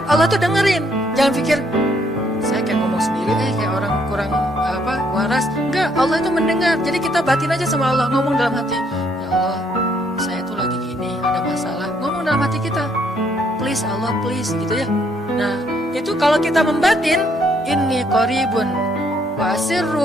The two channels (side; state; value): both; normal; correlation 0.69